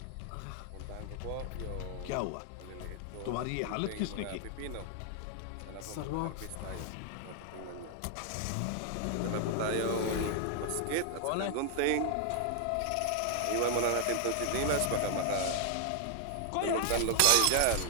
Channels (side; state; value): both; different; correlation 0.00